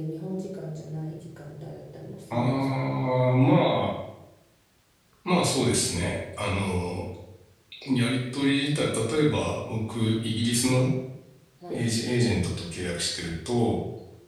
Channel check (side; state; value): both; identical; correlation 1.00